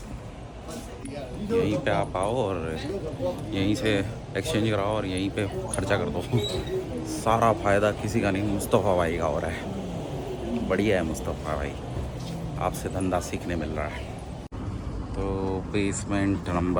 आप आओ और यहीं से एक्सचेंज कराओ और यहीं पे खर्चा कर दो। सारा फ़ायदा किसी का नहीं, मुस्तफ़ा भाई का हो रहा है। बढ़िया है मुस्तफ़ा भाई, आपसे धंधा सीखने मिल रहा है। तो बेसमेंट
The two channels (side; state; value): both; identical; correlation 1.00